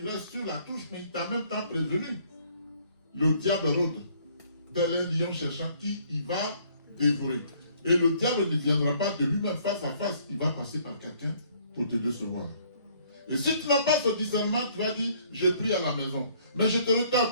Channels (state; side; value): inverted; both; correlation -0.62